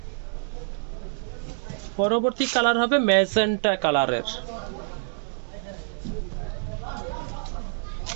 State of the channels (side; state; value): left; silent; digital silence